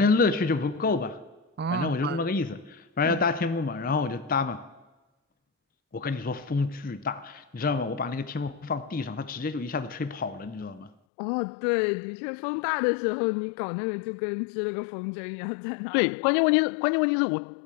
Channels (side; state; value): right; drops out; at 11.0 s